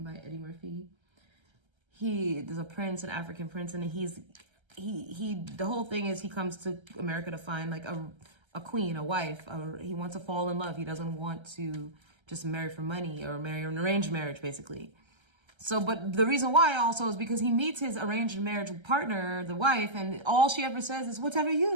by Eddie Murphy. There's a prince, an African prince, and the whole thing is he comes to America to find like a queen, a wife. He wants to fall in love. He doesn't want to just marry for money or marry an arranged marriage, basically. So, but the reason why also is because he meets his arranged marriage partner, the wife, and all she ever says is, whatever you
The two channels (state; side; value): late; left; 1.3 ms